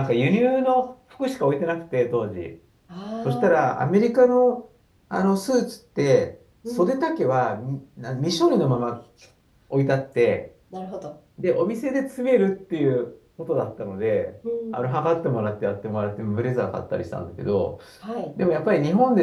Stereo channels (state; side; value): identical; both; correlation 1.00